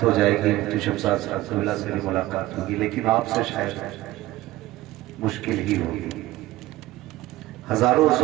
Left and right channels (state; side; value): quieter; left; 17.1 dB